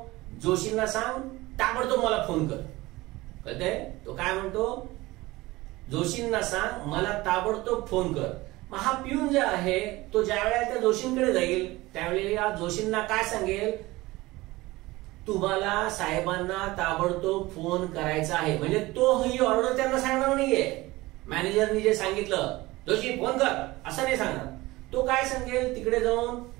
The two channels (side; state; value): left; quieter; 19.9 dB